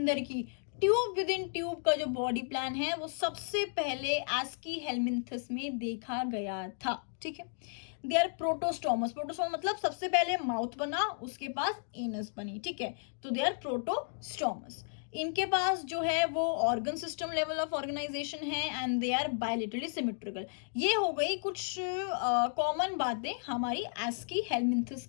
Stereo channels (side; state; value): right; silent; digital silence